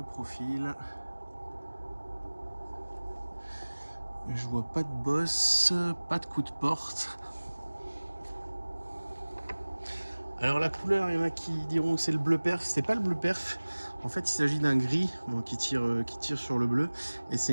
profil. Je vois pas de bosse, pas de coup de porte. Alors la couleur, il y en a qui diront que c'est le bleu perf. C'est pas le bleu perf. En fait, il s'agit d'un gris qui tire sur le bleu. Et c'est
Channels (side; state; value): both; inverted; correlation -1.00